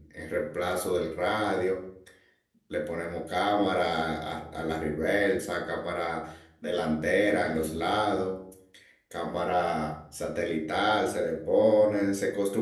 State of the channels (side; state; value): both; identical; correlation 1.00